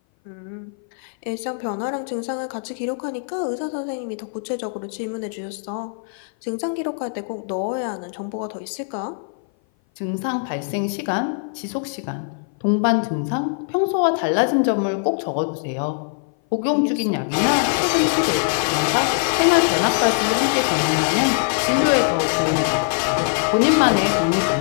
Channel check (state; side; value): silent; right; 58 dB below the other